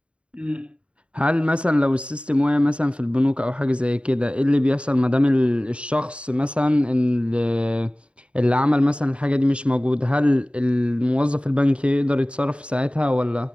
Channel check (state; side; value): late; left; 0.058 ms